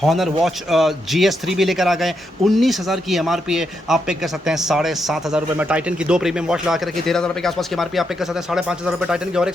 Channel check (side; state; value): both; normal; correlation 0.81